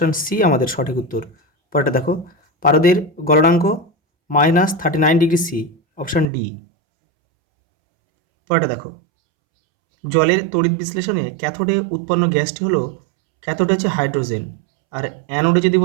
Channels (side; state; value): left; drops out; at 6.2 s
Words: সি আমাদের সঠিক উত্তর। পরেরটা দেখো, পারদের গলনাঙ্ক -39 ডিগ্রি সি। Option D. পরেরটা দেখো, জলের তড়িৎ বিশ্লেষণে ক্যাথোডে উৎপন্ন গ্যাসটি হলো, ক্যাথোডে হচ্ছে হাইড্রোজেন, আর অ্যানোডে যদি